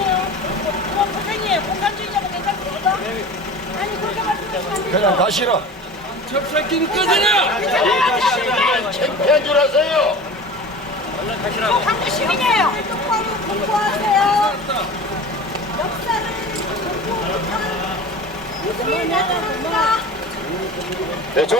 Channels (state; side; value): normal; both; correlation 0.36